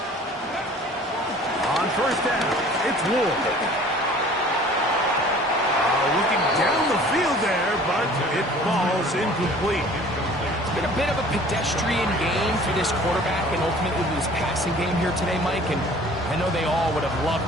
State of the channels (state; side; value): normal; both; correlation 0.49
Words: On first down, it's Ward. Looking down the field there, but it falls incomplete. It's been a bit of a pedestrian game for this quarterback and ultimately this passing game here today, Mike. And I know they all would have